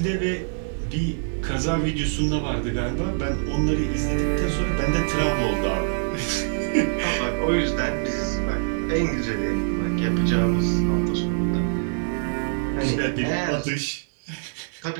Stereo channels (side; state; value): left; silent; digital silence